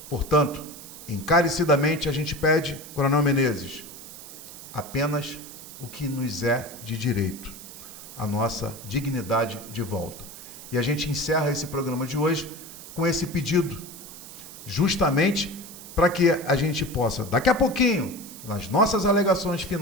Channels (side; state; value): right; noise; hiss, 15 dB below the sound